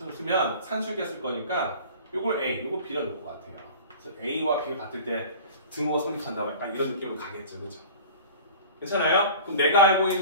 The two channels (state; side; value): inverted; both; correlation -0.40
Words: 산술계 쓸 거니까 요걸 A, 요거 B라 놓을 것 같아요. 그래서 A와 B가 같을 때 등호가 성립한다면 약간 이런 느낌으로 가겠죠, 그죠? 괜찮아요? 그럼 내가 알고